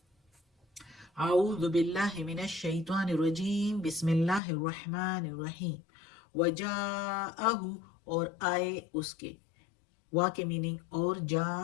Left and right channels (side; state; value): right; drops out; at 4.4 s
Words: اعوذ باللہ من الشیطان الرجیم بسم اللہ الرحمن الرحیم۔ وجاءہ، اور آئے اس کے، وا کے میننگ اور جا